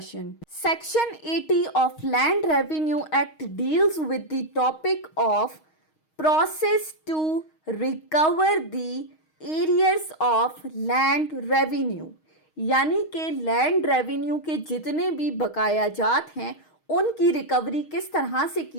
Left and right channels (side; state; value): right; late; 6.4 ms